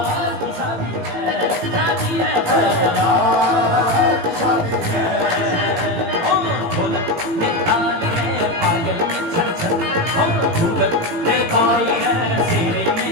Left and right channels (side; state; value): left; late; 18 ms